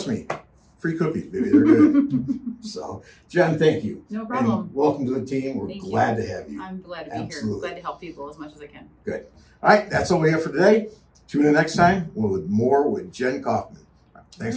me, free cookies, baby, they're good. So, Jen, thank you. No problem. And welcome to the team. We're Thank you. glad to have you. I'm glad to be Absolutely. here. Glad to help people as much as I can. Good. All right, that's all we have for today. Tune in next time with more with Jen Kaufman.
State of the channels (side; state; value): both; identical; correlation 1.00